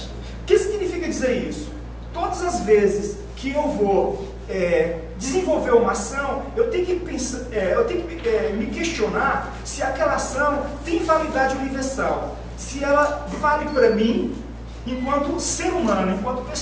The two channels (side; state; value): both; identical; correlation 1.00